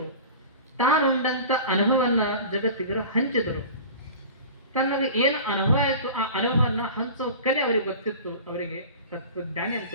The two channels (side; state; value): both; inverted; correlation -0.37